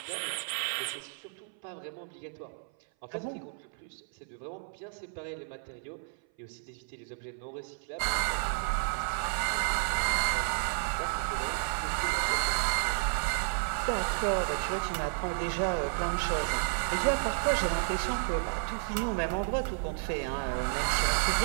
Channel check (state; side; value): silent; left; 56 dB below the other